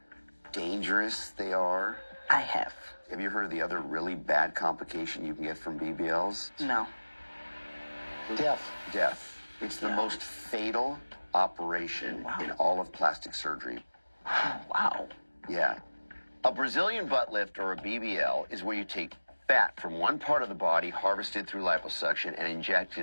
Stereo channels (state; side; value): inverted; both; correlation -1.00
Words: dangerous they are? I have. Have you heard of the other really bad complication you can get from BBLs? No. Death. It's the most fatal operation in all of plastic surgery. Wow. Yeah. A Brazilian butt lift, or a BBL, is where you take fat from one part of the body, harvested through liposuction, and inject